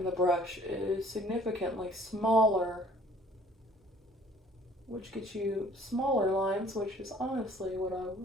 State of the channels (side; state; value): both; normal; correlation 0.54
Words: the brush is significantly smaller, which gets you smaller lines, which is honestly what I